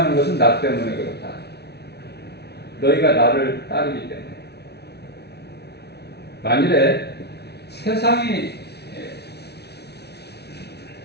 것은 나 때문에 그렇다. 너희가 나를 따르기 때문에. 만일에 세상이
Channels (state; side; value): late; right; 0.49 ms